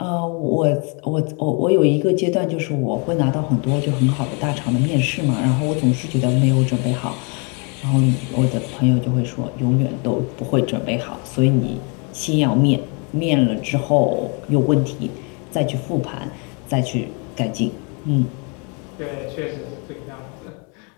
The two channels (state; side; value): quieter; right; 34.7 dB